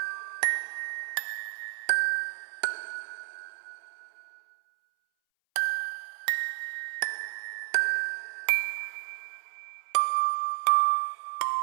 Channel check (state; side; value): silent; left; 57 dB below the other